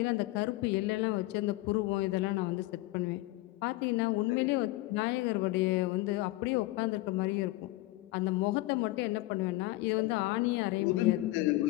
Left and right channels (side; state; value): right; quieter; 19.1 dB